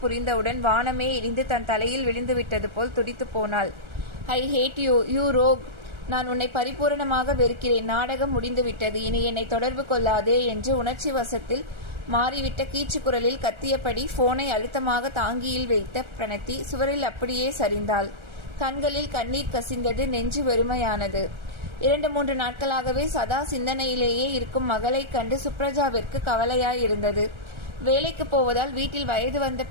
புரிந்தவுடன் வானமே இடிந்து தன் தலையில் விழுந்து விட்டது போல் துடித்து போனாள். ஐ ஹேட் யூ, யூ ரோக். நான் உன்னை பரிபூரணமாக வெறுக்கிறேன். நாடகம் முடிந்துவிட்டது. இனி என்னை தொடர்பு கொள்ளாதே என்று உணர்ச்சி வசத்தில் மாறிவிட்ட கீச்சு குரலில் கத்தியபடி போனை அழுத்தமாக தாங்கியில் வைத்த பிரணத்தி சுவரில் அப்படியே சரிந்தாள். கண்களில் கண்ணீர் கசிந்தது. நெஞ்சு வெறுமையானது. 2-3 நாட்களாகவே சதா சிந்தனையிலேயே இருக்கும் மகளைக் கண்டு சுப்ரஜாவிற்கு கவலையாயிருந்தது. வேலைக்கு போவதால் வீட்டில் வயது வந்த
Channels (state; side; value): late; left; 1.3 ms